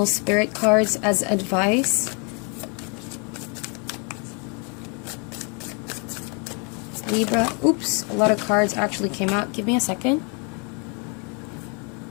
spirit cards as advice. Libra, oops, a lot of cards actually came out. Give me a second.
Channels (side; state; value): right; quieter; 34.8 dB